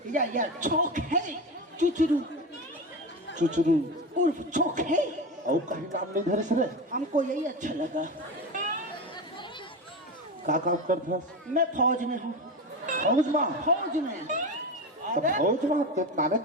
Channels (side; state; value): both; normal; correlation 0.22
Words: या चौक है चुचरू चुचरू उर्फ चौक है। और कहीं नाम नहीं धरे सर हमको यही अच्छा लगा। का काम करता मैं फौज में हूँ। फौज में फौज में तो फौज में तो नाने